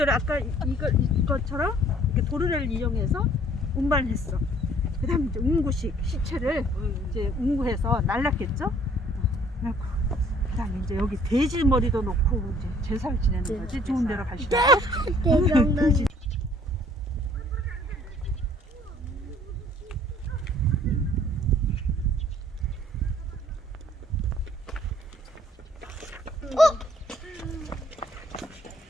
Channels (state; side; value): normal; both; correlation 0.58